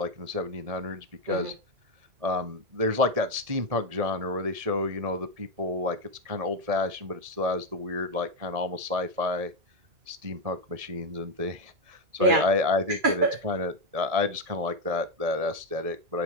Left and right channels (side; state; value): left; late; 1.7 ms